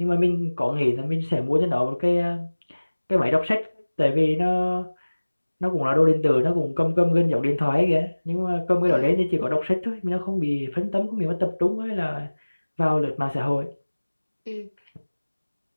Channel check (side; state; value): both; inverted; correlation -1.00